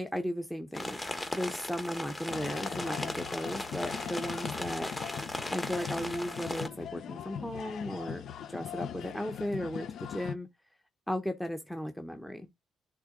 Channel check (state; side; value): normal; both; correlation 0.90